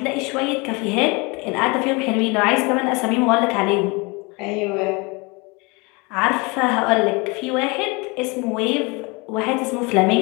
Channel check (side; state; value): right; quieter; 27.9 dB